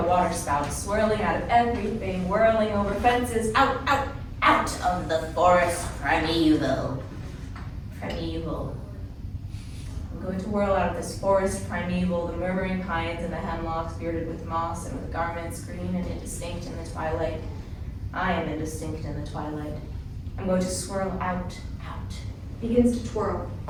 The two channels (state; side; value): identical; both; correlation 1.00